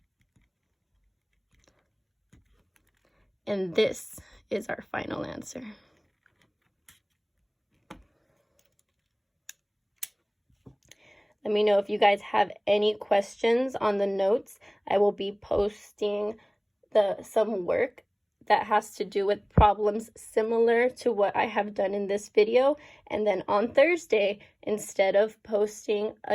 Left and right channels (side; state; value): both; identical; correlation 1.00